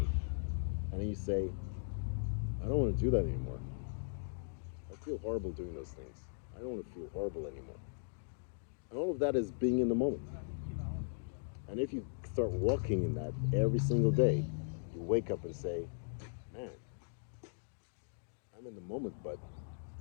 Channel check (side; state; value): right; silent; digital silence